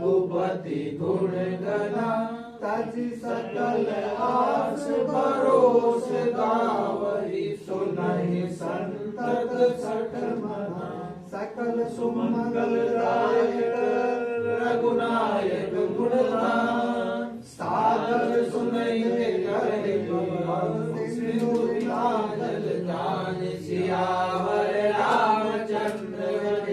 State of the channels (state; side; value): identical; both; correlation 1.00